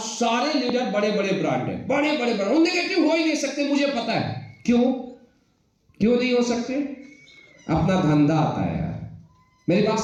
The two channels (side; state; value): both; identical; correlation 1.00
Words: लीडर बड़े बड़े ब्रांड हैं, बड़े बड़े ब्रांड। वो नेगेटिव हो ही नहीं सकते, मुझे पता है। क्यों नहीं हो सकते? अपना धंधा आता है यार। मेरी बात